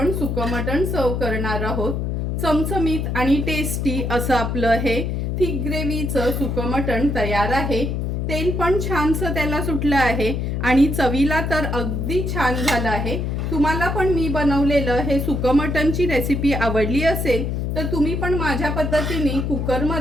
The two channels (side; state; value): left; noise; hum, 1 dB below the sound